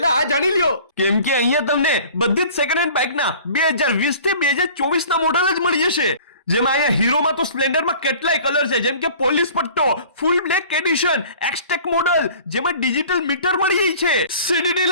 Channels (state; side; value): inverted; both; correlation -0.46